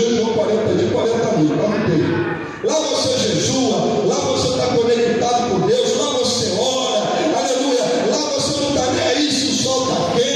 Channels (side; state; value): both; identical; correlation 1.00